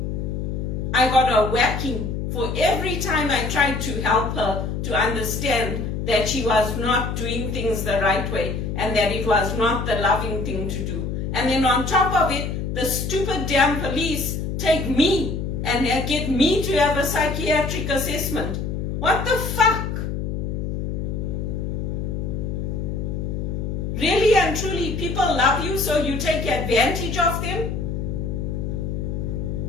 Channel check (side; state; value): left; noise; hum, 3 dB below the sound